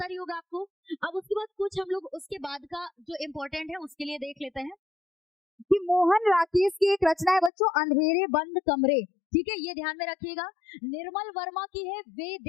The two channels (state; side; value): drops out; right; at 7.5 s